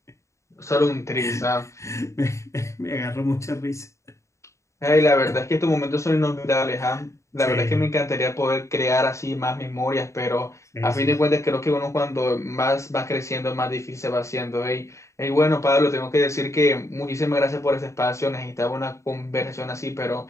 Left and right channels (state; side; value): late; right; 0.14 ms